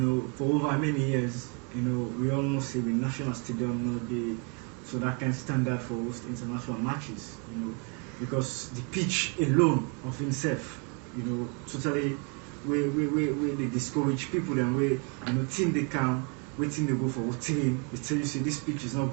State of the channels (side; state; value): left; quieter; 35.6 dB